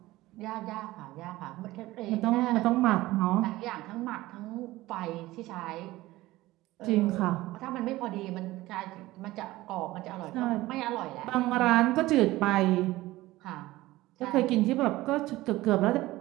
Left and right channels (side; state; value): left; quieter; 17.9 dB